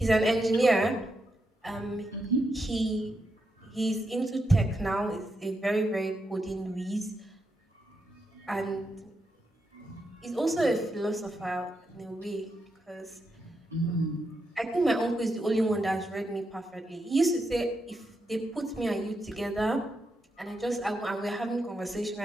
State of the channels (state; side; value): normal; both; correlation 0.84